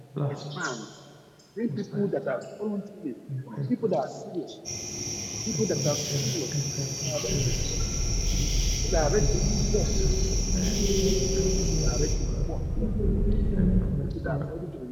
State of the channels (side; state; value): both; identical; correlation 1.00